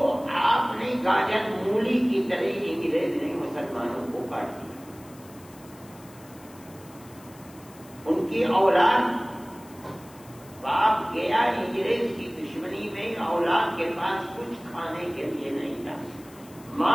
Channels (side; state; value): left; noise; hiss, 23 dB below the sound